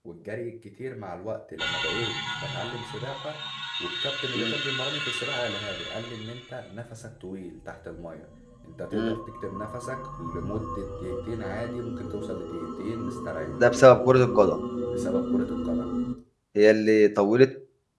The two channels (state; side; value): identical; both; correlation 1.00